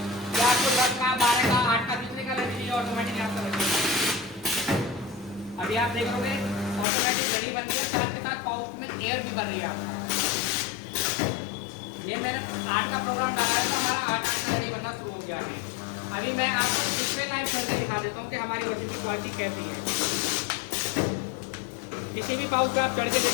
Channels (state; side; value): drops out; right; at 6.9 s